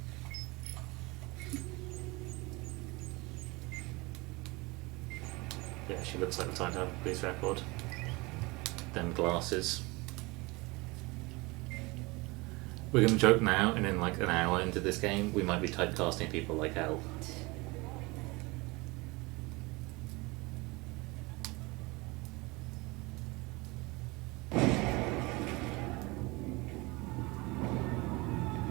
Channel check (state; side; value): quieter; left; 24.4 dB